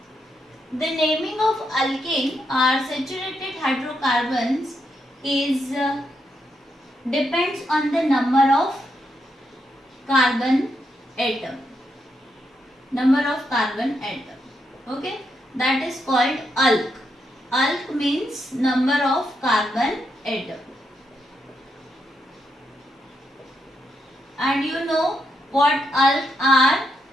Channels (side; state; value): both; normal; correlation 0.81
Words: the naming of alkane or saturated hydrocarbons is depends on the number of carbon atom. Number of carbon atom. Okay, that is called alk. Alk means number of carbon atom. And you know what alk are.